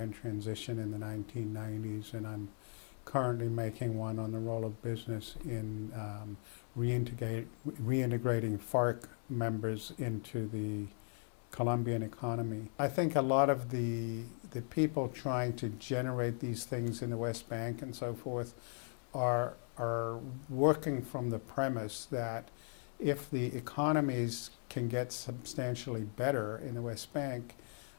transition in the 1990s, and I'm currently making one on the role of business in reintegrating FARC members into the Colombian economy. I think a lot of the people trying to generate these things in the West Bank and so forth are working from the premise that if the economies can get substantially better in the West Bank,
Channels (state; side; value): silent; right; 52 dB below the other